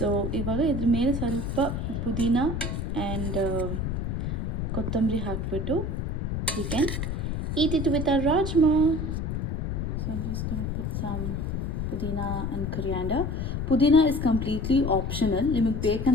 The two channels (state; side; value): noise; left; rumble, 2 dB below the sound